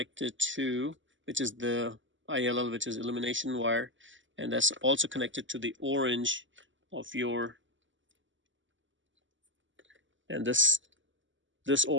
to, which is the ILL, which is illumination wire, and that's also connected to the orange of your. And this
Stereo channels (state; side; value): late; left; 0.55 ms